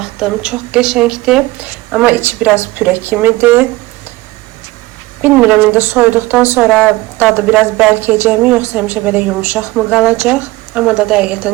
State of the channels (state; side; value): quieter; left; 19.9 dB